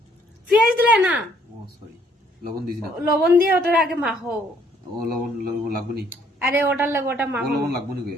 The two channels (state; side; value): normal; both; correlation 0.65